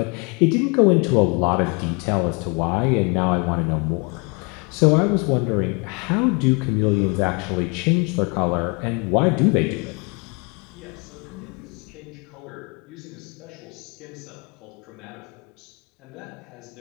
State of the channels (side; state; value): right; quieter; 31.1 dB